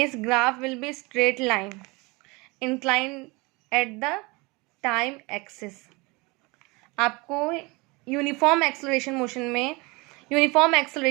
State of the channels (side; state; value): left; quieter; 25.9 dB